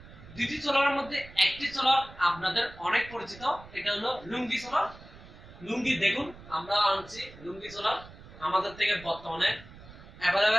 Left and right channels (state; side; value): noise; right; rumble, 19 dB below the sound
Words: দুটি সোলারের মধ্যে একটি সোলার আপনাদের অনেক পরিচিত, এটা হলো লুঙ্গি সোলার। লুঙ্গি দেখুন, আমরা আনছি লুঙ্গি সোলার, আমাদের থেকে বর্তমানে